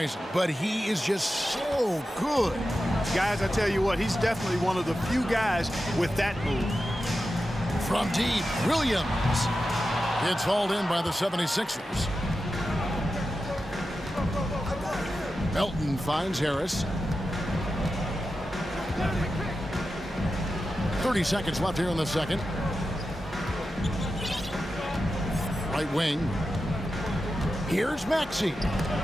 But he is just so good. Guys, I tell you what, he's definitely one of the few guys with that move. From deep, Williams. It's hauled in by the 76ers. Melton finds Harris. 30 seconds left here in the second. Right wing. Here's Maxey.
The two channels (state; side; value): normal; both; correlation 0.91